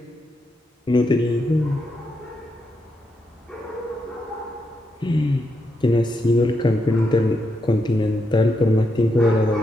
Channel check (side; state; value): both; normal; correlation 0.82